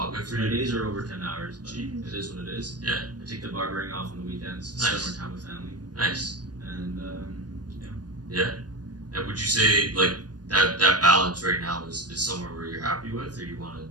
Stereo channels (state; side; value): late; left; 0.69 ms